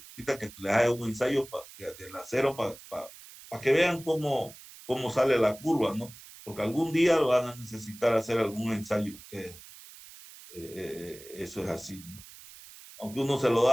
que les haga un ensayo del acero para que vean cómo sale la curva, ¿no? Porque algún día van a necesitar hacer algún ensayo ustedes. Eso es así, ¿no? Aunque uno se lo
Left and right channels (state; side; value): noise; right; hiss, 18 dB below the sound